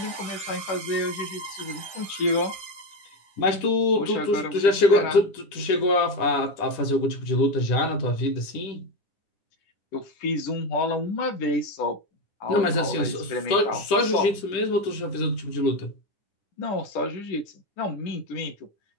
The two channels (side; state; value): right; late; 10 ms